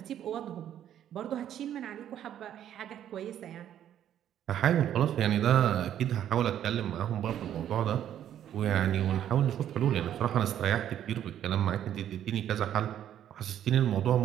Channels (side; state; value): left; quieter; 10.6 dB